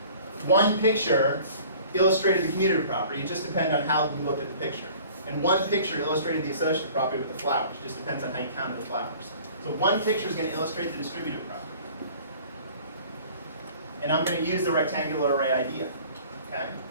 one picture illustrated the commutative property, it just depends on how you looked at the picture. And one picture illustrated the associative property with the flowers. It just depends on how you counted the flowers. So one picture is going to illustrate the distributive property. And I'm going to use the rectangular array idea. Okay?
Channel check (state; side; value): inverted; both; correlation -0.48